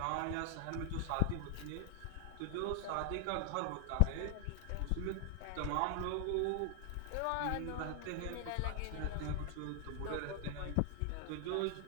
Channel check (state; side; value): different; both; correlation 0.00